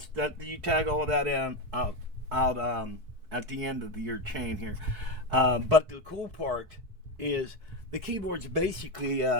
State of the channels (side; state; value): left; late; 4.6 ms